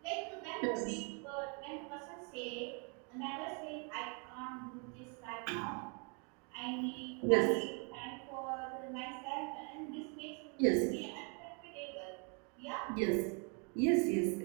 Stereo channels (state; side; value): quieter; left; 36.0 dB